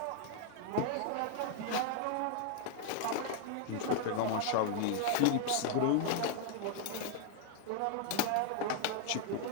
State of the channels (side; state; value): both; different; correlation 0.00